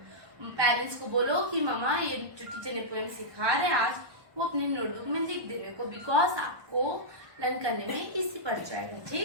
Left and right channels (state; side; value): late; left; 1.2 ms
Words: Parents को बोलो कि मामा ये जो टीचर ने पोयम सिखा रहे हैं आज वो अपने नोटबुक में लिख देने को, बिकॉज आपको लर्न करने में इजी पड़ जाएगा.